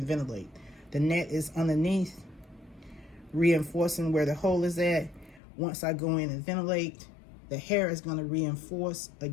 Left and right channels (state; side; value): drops out; right; at 5.4 s